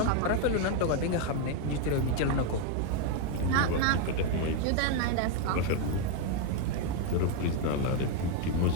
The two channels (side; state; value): both; different; correlation 0.01